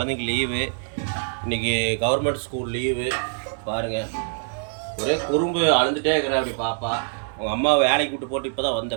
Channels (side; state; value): left; silent; 62 dB below the other